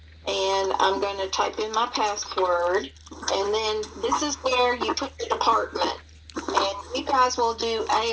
and I'm going to type in my password. And then this is where you put the department. And you guys will do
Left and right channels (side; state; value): both; identical; correlation 1.00